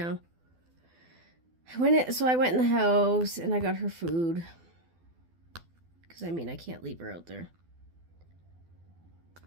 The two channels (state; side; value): late; left; 12 ms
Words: So I went in the house and I got her food. Because, I can't leave her out there.